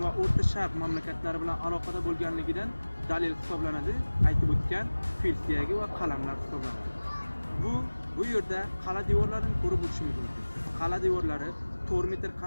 va O'rta Sharq mamlakatlari bilan aloqada bo'lganligidan dalil hisoblanadi. Aytib o'tgan fil suyagi va qalamlar hisoblanadi. Bu yerda qala devorlarini ko'rib o'tishimiz mumkin. Qala devorlari 4 metr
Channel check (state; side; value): inverted; both; correlation -1.00